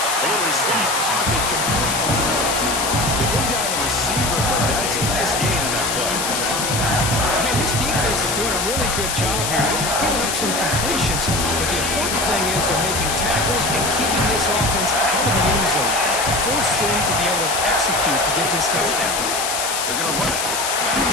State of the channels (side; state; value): left; noise; hiss, 1 dB below the sound